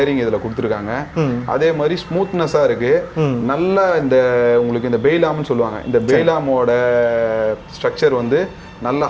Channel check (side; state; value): both; identical; correlation 1.00